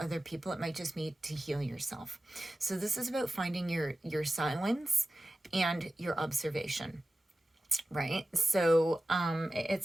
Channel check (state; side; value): normal; both; correlation 0.94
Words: people. It might just be to heal yourself. So this is about finding your silence and your observation, right? So